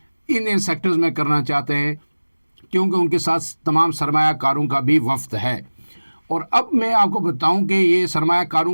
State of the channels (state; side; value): inverted; both; correlation -1.00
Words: ان سیکٹرز میں کرنا چاہتے ہیں، کیونکہ ان کے ساتھ تمام سرمایہ کاروں کا بھی وفد ہے۔ اور اب میں آپ کو بتاؤں کہ یہ سرمایہ